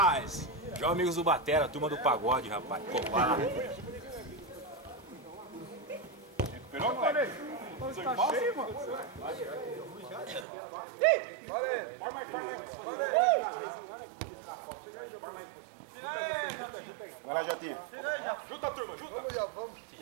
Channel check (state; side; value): drops out; left; at 10.5 s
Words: Já amigos do Batera, turma do pagode, rapaz. Covar. Recuperou, moleque? Tá cheio, mano. Valeu. Forma aí. Vai lá, Jotinha. Junta, turma, junta! Vamos.